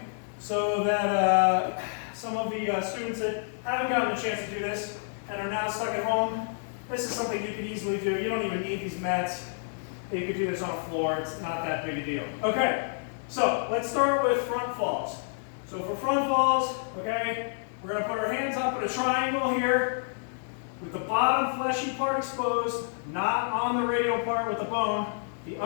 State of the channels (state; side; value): silent; right; digital silence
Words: so that some of the students that haven't gotten a chance to do this and are now stuck at home, this is something you can easily do. You don't even need these mats. You could do this on a floor. It's not that big a deal. Okay, so let's start with front falls. So for front falls, okay, we're going to put our hands up in a triangle here with the bottom fleshy part exposed, not on the radial part with the bone, the